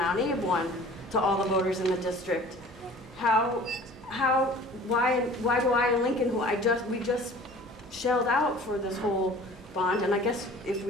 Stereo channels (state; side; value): normal; both; correlation 0.46